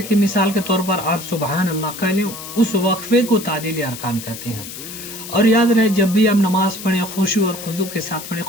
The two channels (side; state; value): left; noise; hiss, 11 dB below the sound